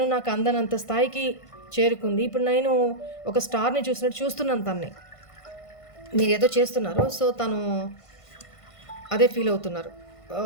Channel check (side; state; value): right; late; 1.5 ms